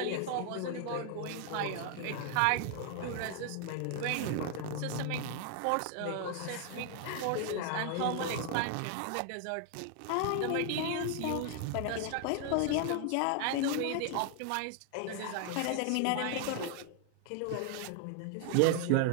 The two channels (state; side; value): different; both; correlation 0.00